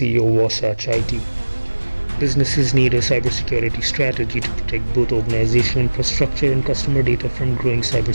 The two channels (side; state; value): both; inverted; correlation -1.00